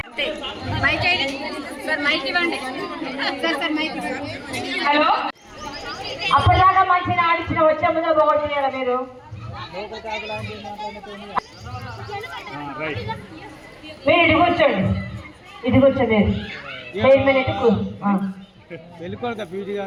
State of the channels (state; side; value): identical; both; correlation 1.00